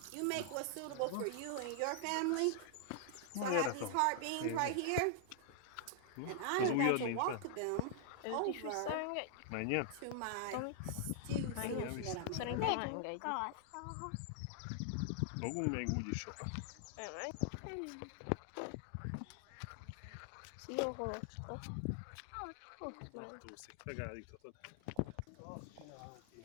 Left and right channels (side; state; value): both; different; correlation -0.01